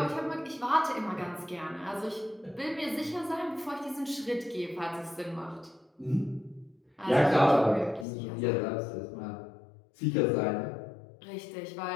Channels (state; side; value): drops out; right; at 8.1 s